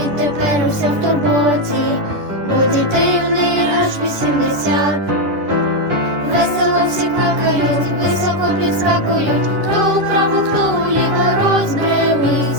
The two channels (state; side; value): late; left; 10 ms